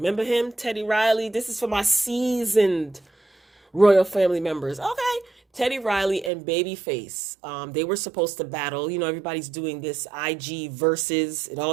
him? Teddy Riley. This is for my seasoned royal family members. Okay. Teddy Riley and Babyface. They were supposed to battle. You know, everybody's doing this IG versus. It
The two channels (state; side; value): drops out; left; at 6.3 s